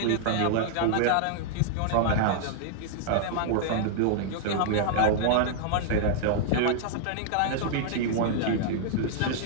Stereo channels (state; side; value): different; both; correlation -0.01